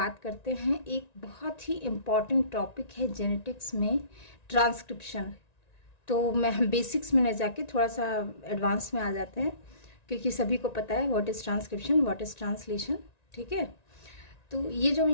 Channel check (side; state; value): right; late; 1.9 ms